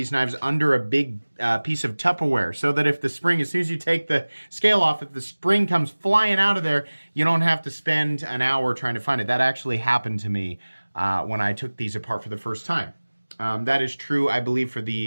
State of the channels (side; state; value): both; inverted; correlation -1.00